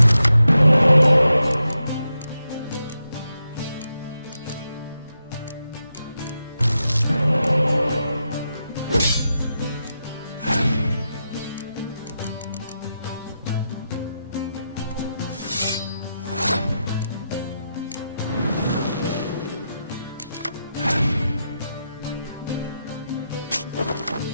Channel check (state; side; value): inverted; both; correlation -0.86